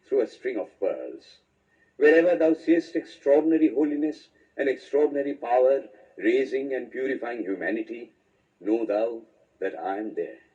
through a string of pearls. Wherever thou seest extraordinary holiness and extraordinary power raising and purifying humanity, know thou that I am there.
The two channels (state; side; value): identical; both; correlation 1.00